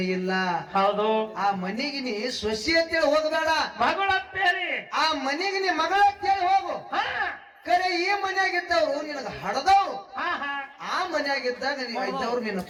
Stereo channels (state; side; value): identical; both; correlation 1.00